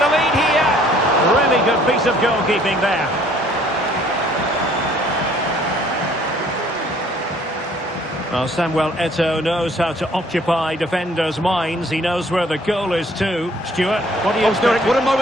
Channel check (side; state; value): both; normal; correlation 0.59